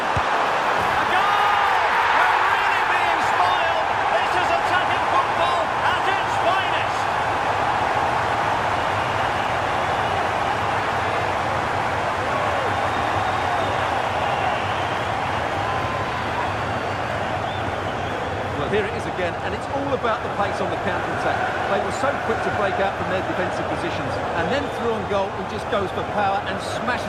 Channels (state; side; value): identical; both; correlation 1.00